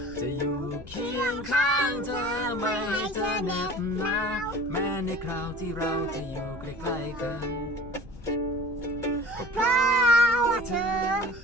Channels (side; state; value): left; noise; rumble, 17 dB below the sound